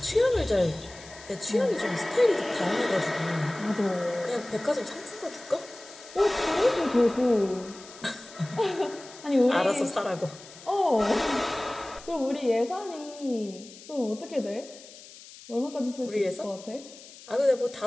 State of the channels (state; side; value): noise; left; hiss, 18 dB below the sound